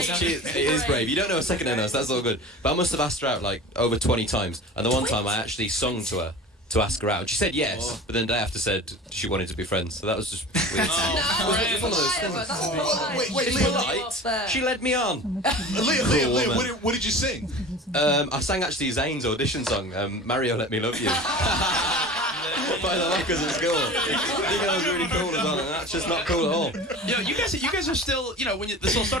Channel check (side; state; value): both; normal; correlation 0.37